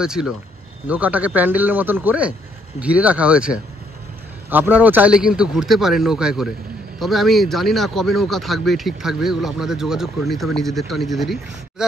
নৌকাটাকে প্যান্ডেলের মতন করে ঘিরে রাখা হয়েছে। আপনারাও চাইলে কিন্তু ঘুরতে পারেন নৌকায় করে। তবে আমি জানি না কবে নৌকা থাকবে, ঠিক থাকবে, এগুলো আপনাদের যোগাযোগ করে নিতে হবে, নিজেদেরই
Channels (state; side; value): normal; both; correlation 0.69